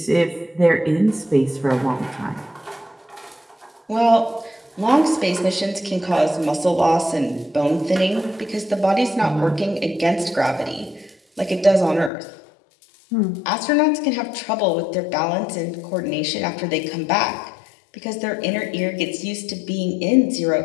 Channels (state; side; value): drops out; right; at 12.1 s